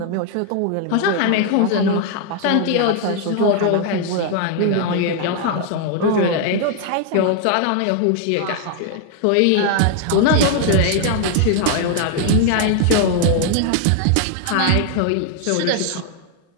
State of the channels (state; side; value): different; both; correlation 0.00